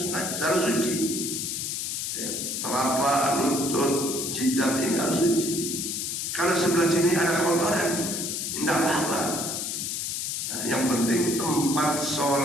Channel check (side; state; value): left; noise; hiss, 2 dB below the sound